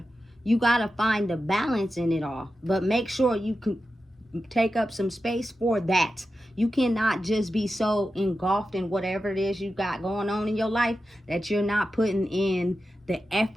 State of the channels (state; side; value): normal; both; correlation 0.91